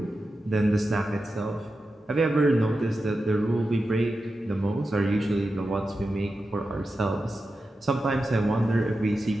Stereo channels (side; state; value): both; normal; correlation 0.91